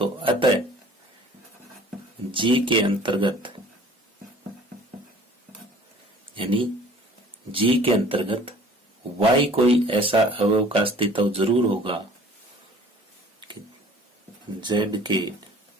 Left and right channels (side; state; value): both; normal; correlation 0.49